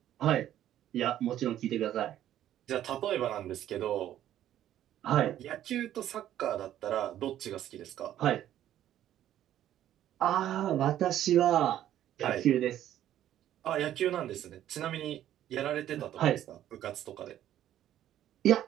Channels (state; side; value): quieter; left; 11.9 dB